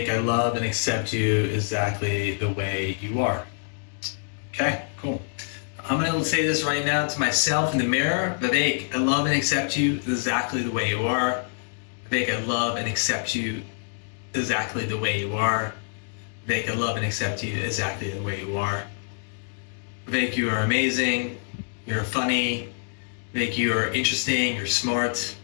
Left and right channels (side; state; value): right; silent; digital silence